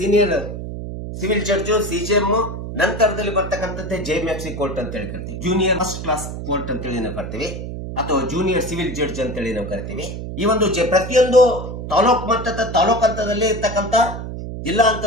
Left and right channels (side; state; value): right; noise; hum, 7 dB below the sound